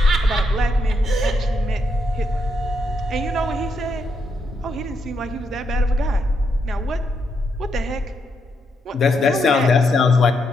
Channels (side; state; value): both; normal; correlation 0.79